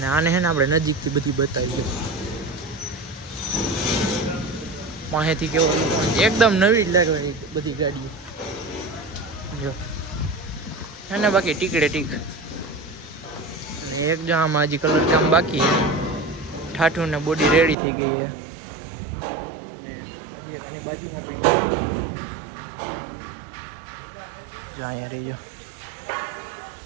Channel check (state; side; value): drops out; left; at 17.8 s